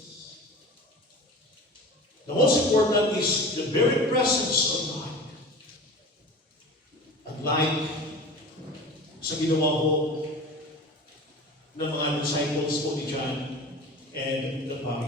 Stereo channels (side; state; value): both; normal; correlation 0.35